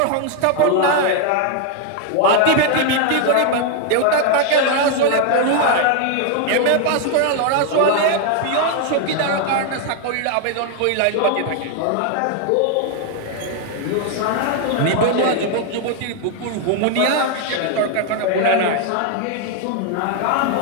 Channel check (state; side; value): different; both; correlation 0.00